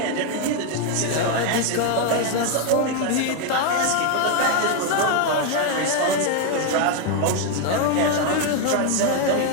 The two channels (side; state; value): both; different; correlation 0.01